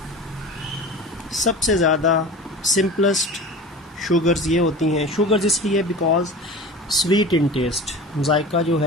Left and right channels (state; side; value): normal; both; correlation 0.35